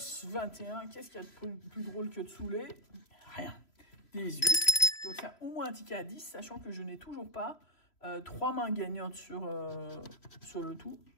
21. Qu'est-ce qu'il y a de plus drôle que de saouler? Rien. 18. Donc c'est au moins un ticket à 10, sachant que je n'ai toujours pas 3 mains gagnantes sur le tout.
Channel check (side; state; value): right; late; 3.0 ms